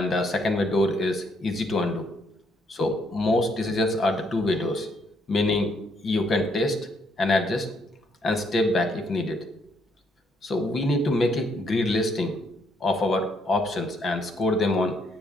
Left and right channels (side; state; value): both; normal; correlation 0.72